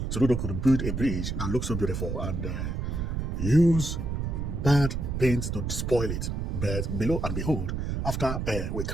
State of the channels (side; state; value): right; noise; rumble, 2 dB below the sound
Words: Soludo could build a bridge that looks so beautiful and use bad paint to spoil it. But below and behold, after we